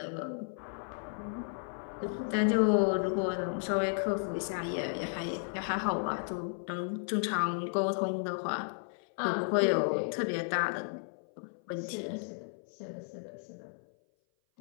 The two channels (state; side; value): silent; right; 55 dB below the other